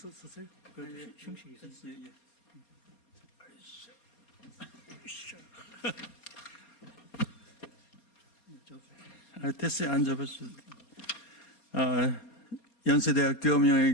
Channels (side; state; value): right; late; 4.3 ms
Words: 테스에 앉아보겠습니다. 연세대학교